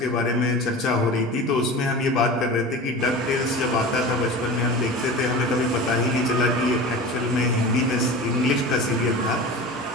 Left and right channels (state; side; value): normal; both; correlation 0.33